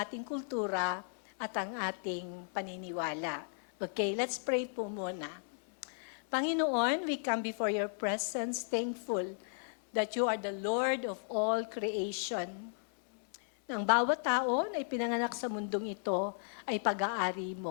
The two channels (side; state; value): right; silent; 54 dB below the other